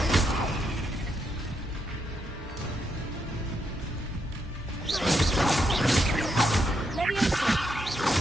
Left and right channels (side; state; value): both; normal; correlation 0.79